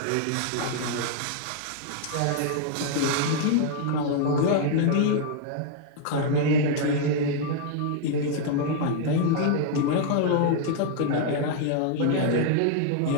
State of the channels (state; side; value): different; both; correlation 0.00